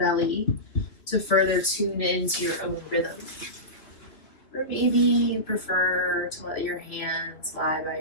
to further tune into your own rhythm. Or maybe you prefer to let your hands lie by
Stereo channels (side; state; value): right; late; 3.3 ms